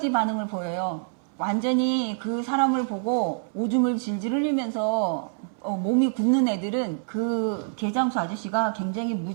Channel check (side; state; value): left; silent; 60 dB below the other